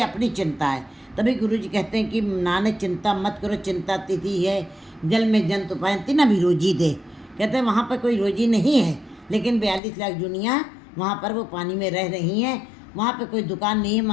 अपनी चिंता है। तभी गुरु जी कहते हैं कि नानक चिंता मत करो, चिंता तिथि है जल में जंतु पायंती ना भी रोजी दे। कहते हैं वहाँ पर कोई रोजी नहीं है, लेकिन 42 लाख दुनिया वहाँ पर वो पानी में रह रही हैं। वहाँ पे कोई दुकान नहीं है,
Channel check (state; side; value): drops out; right; at 9.8 s